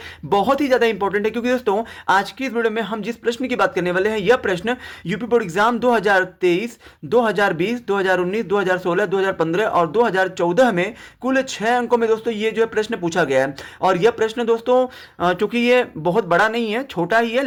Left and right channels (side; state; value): both; identical; correlation 1.00